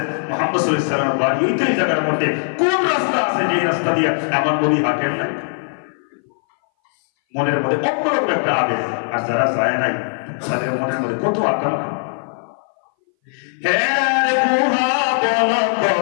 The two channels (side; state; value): right; silent; 61 dB below the other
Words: মুহাম্মদ সাল্লাল্লাহু আলাইহি ওয়াসাল্লামের বাড়ি ওই তো এই জায়গার মধ্যে। কোন রাস্তা আছে যে রাস্তা দিয়ে আমার নবী হাঁটেন না? মনের মধ্যে অন্যরকম একটা আবেগ। আর যারা যায় নাই তাদের মনের মধ্যে কত আকাঙ্ক্ষা।